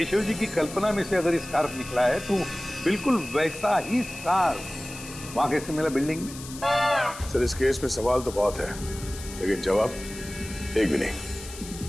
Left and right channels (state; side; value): noise; left; hiss, 14 dB below the sound